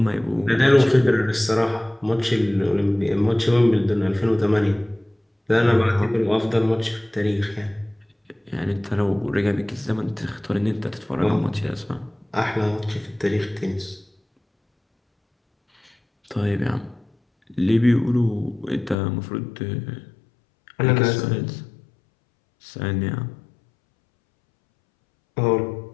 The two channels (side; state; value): right; drops out; at 18.9 s